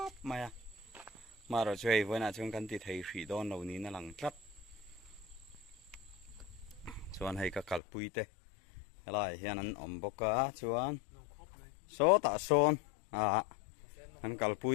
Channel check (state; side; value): drops out; right; at 7.8 s